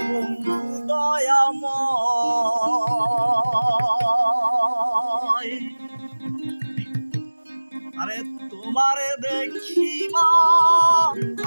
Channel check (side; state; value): both; inverted; correlation -1.00